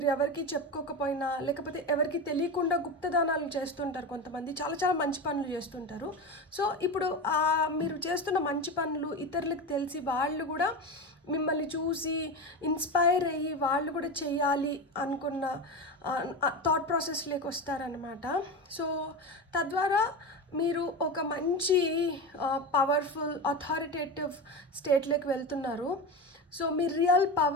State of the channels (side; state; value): both; normal; correlation 0.21